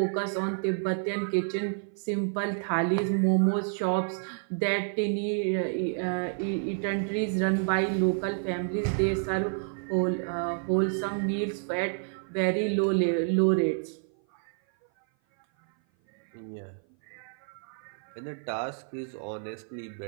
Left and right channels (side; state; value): left; silent; 56 dB below the other